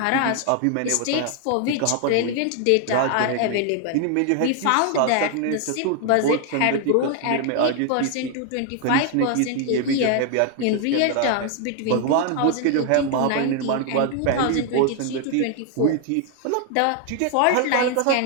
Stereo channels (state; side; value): different; both; correlation 0.00